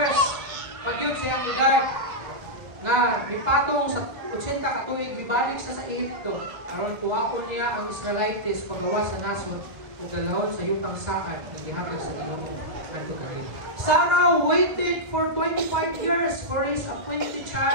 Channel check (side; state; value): left; late; 1.5 ms